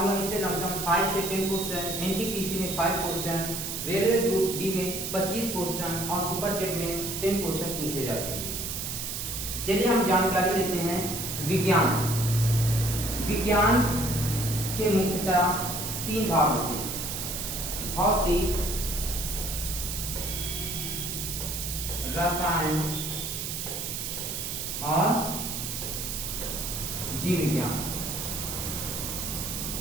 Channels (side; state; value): right; noise; hiss, 4 dB below the sound